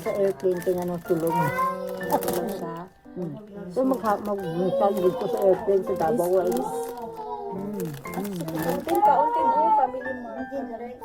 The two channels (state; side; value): identical; both; correlation 1.00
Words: sa airplane kaya nang tulog. Tulog siya. So mag-tag dito sa airplane sa Davao. Unting ka, unting mo. Family mo.